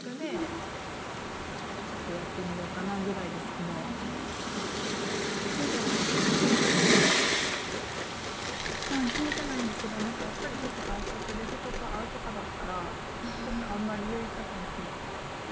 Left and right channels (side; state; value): both; identical; correlation 1.00